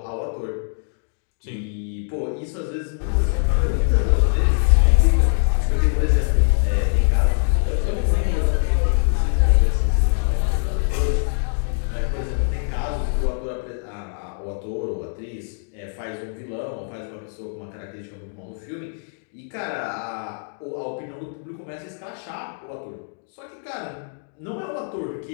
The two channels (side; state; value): right; silent; digital silence